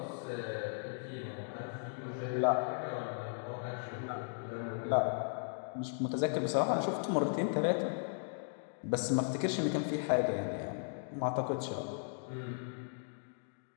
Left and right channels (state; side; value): silent; right; digital silence